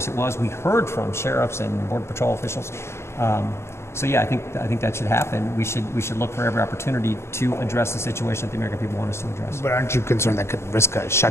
it was. We heard from sheriffs and Border Patrol officials. So yeah, I think that should happen. We should look for every opportunity to address the situation that the American people want us to address. But aren't you concerned that could risk a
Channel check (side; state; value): right; late; 0.13 ms